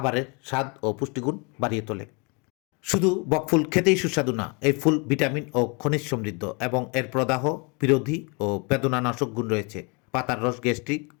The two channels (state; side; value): quieter; right; 31.8 dB